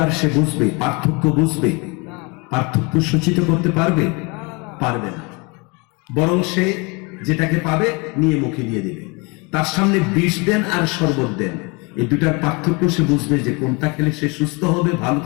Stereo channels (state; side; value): quieter; right; 29.1 dB